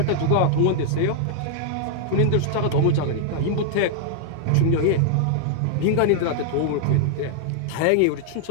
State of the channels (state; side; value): different; both; correlation -0.01